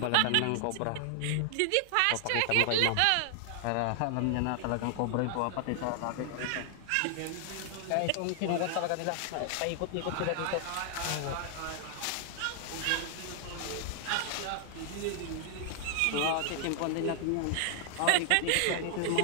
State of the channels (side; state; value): both; different; correlation 0.00